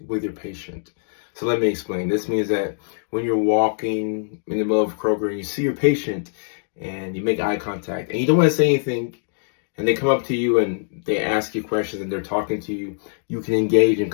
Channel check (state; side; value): silent; right; digital silence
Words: with your patient. So let me explain. This means that when you're walking in the middle of Kroger and you see your patient and you make eye contact and you don't want to say anything, and they come up to you and they ask you questions and they're talking to you, you can engage in